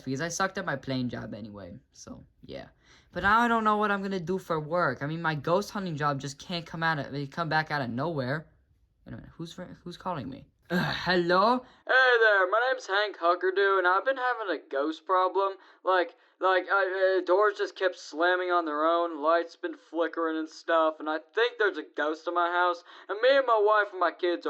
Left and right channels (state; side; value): identical; both; correlation 1.00